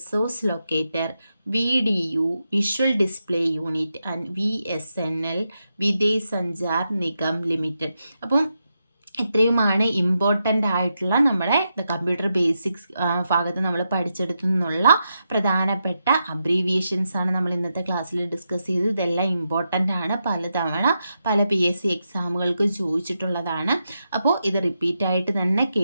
locator, VDU visual display unit and VSNL Videsh Sanchar Nigam limited. അപ്പം ഇത്രയുമാണ് important ആയിട്ടുള്ള നമ്മുടെ computer basics ഭാഗത്ത് നമ്മൾ പഠിച്ചെടുത്തു നിന്നുള്ള പ്രധാനപ്പെട്ട abbreviations ആണ് നമ്മൾ ഇന്നത്തെ ക്ലാസ്സിൽ ഡിസ്കസ് ചെയ്തത്. ഇതെല്ലാം ഇമ്പോർട്ടൻ്റ് ആണ്, പലതവണ പല PSC എക്സാമുകൾക്ക് ചോദിച്ചിട്ടുള്ളതാണ്. അപ്പോൾ ഇത് റിപ്പീറ്റായിട്ട് തന്നെ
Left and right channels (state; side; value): inverted; both; correlation -0.86